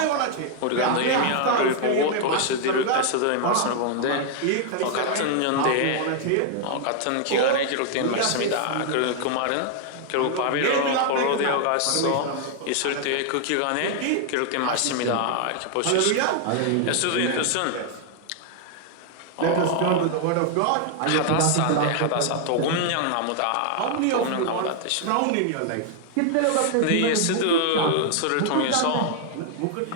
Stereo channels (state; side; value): different; both; correlation 0.00